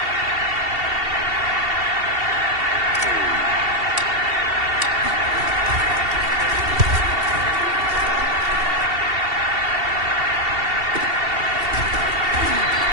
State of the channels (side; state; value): left; late; 2.7 ms